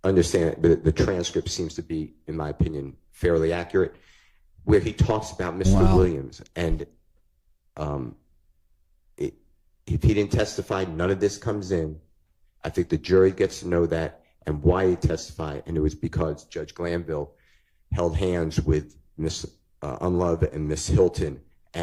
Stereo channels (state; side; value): identical; both; correlation 1.00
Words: understand it, the transcript seems to be, in my opinion, fairly accurate, where he talks about Mr. Williams. And if he didn't testify, none of this comes in. I think the jury gets to know that and why he testified, and it was because Judge Glanville held hands with Miss Unlove and Miss Hilton,